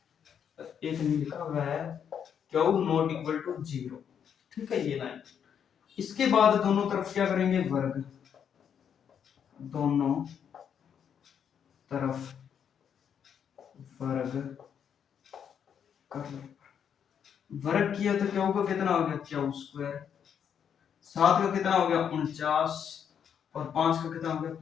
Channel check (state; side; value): quieter; right; 8.1 dB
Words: एक नहीं लिखा हुआ है, क्यू नॉट इक्वल टू 0, ठीक है ये लाइन। इसके बाद दोनों तरफ क्या करेंगे? वर्ग। दोनों तरफ वर्ग कर लो। वर्ग किया तो क्यू का कितना हो गया? Q square. 7 का कितना हो गया? 49। और 5 का कितना हो गया?